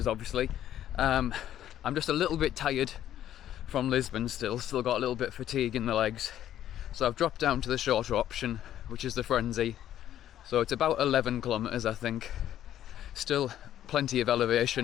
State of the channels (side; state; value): right; quieter; 11.5 dB